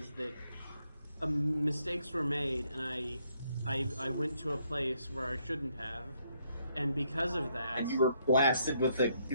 that mistakes were made, and I went to a place where I shouldn't have, and because of that, And you were blasted with a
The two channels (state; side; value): inverted; both; correlation -0.73